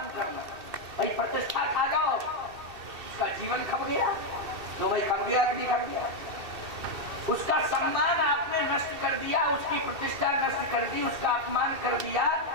करना। भाई प्रतिष्ठा खा जाओ, उसका जीवन खप गया, तो भाई खप गया कि नहीं खप गया। उसका सम्मान आपने नष्ट कर दिया, उसकी प्रतिष्ठा नष्ट कर दी, उसका अपमान कर दिया,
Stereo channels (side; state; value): left; late; 2.7 ms